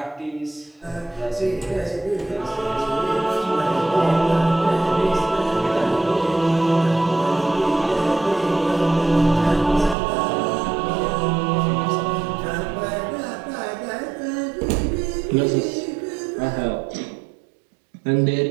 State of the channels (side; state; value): left; drops out; at 10.0 s